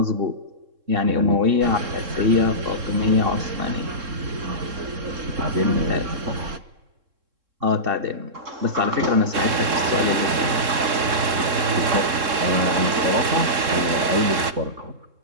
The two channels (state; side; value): late; left; 3.7 ms